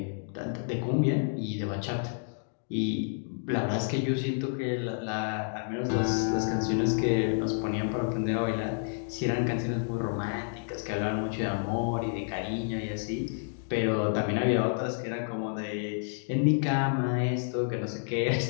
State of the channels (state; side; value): silent; right; digital silence